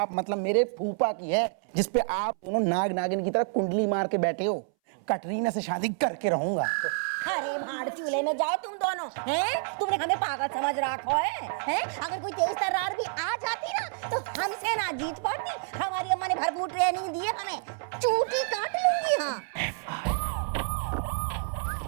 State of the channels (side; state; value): left; silent; 59 dB below the other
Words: मतलब मेरे फूफा की है, जिसपे आप दोनों नाग नागिन की तरह कुंडली मार के बैठे हो। कटरीना से शादी करके रहूंगा। अरे भाड़ चूल्हे में जाओ तुम दोनों, हैं? तुमने हमें पागल समझ रखा है, हैं? अगर कोई तेज तर्रार भी आ जाती ना तो हमसे ना जीत पाती। हमारी अम्मा ने भरपूर ट्रेनिंग दी है हमें, चूटी काट लूंगी। हाँ